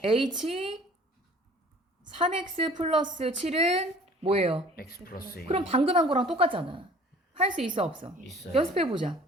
h 3x 플러스 7은 뭐예요? x 플러스 2. 그럼 방금 한 거랑 똑같잖아. 할 수 있어, 없어? 있어요. 연습해보자.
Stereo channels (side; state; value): both; normal; correlation 0.50